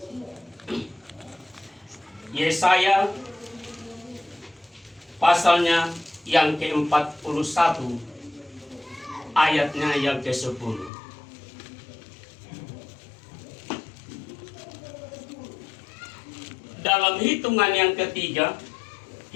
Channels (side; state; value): right; drops out; at 10.9 s